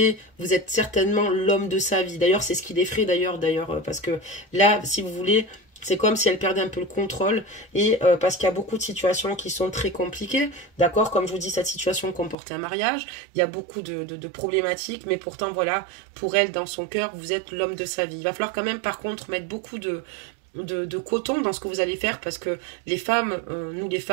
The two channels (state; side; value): drops out; left; at 12.4 s